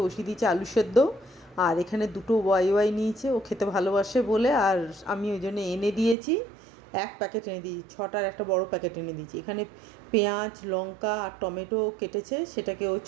বসিয়ে দিয়েছে আলু সেদ্ধ। আর এখানে দুটো ওয়াই নিয়েছে, ও খেতে ভালোবাসে বলে। আর আমি ওই জন্য এনে দিয়েছি, এক প্যাকেট এনে দিয়েছি, ছটার একটা বড় প্যাকেট এনে দিয়েছি। এখানে পেঁয়াজ, লঙ্কা আর টমেটো কেটেছে, সেটাকে ও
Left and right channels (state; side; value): drops out; left; at 6.2 s